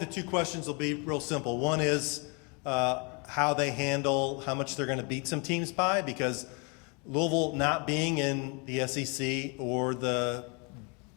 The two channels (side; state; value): right; quieter; 33.7 dB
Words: 2 questions will be real simple. One is how they handle how much they're going to beat some teams by, because Louisville not being in the SEC or the